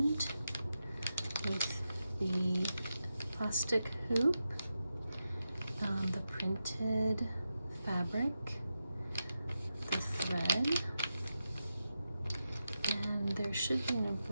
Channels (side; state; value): both; inverted; correlation -0.90